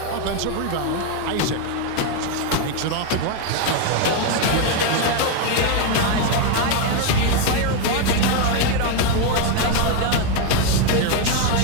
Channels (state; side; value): different; both; correlation 0.01